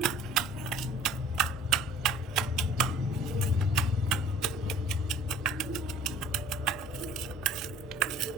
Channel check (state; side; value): normal; both; correlation 0.51